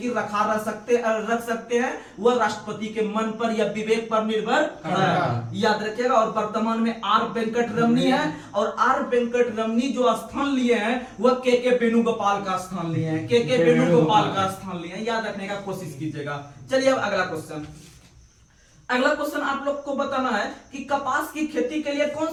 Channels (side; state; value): both; identical; correlation 1.00